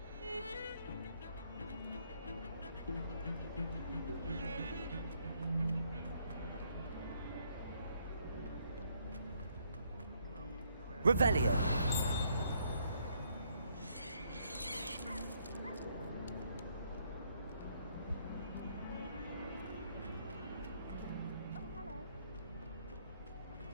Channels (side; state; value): both; inverted; correlation -0.70